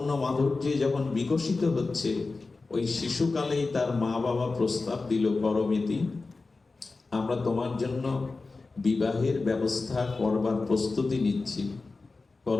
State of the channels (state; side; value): quieter; right; 3.8 dB